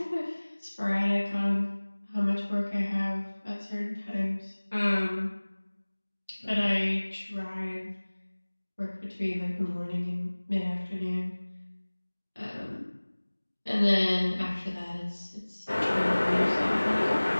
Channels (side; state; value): both; inverted; correlation -1.00